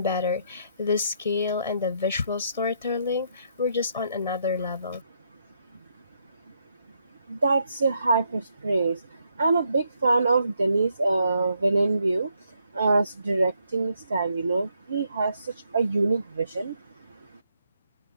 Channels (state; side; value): inverted; both; correlation -0.75